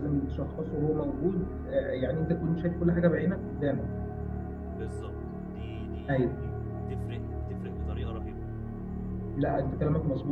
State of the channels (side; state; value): both; identical; correlation 1.00